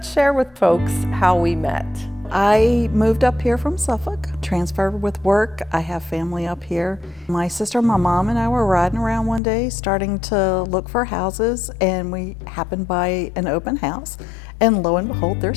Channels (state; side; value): drops out; right; at 9.4 s